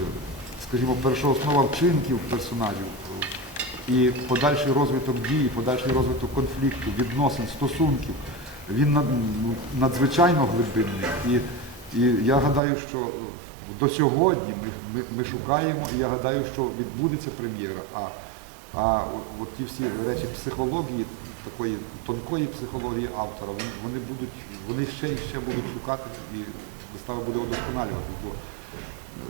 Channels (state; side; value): drops out; left; at 12.6 s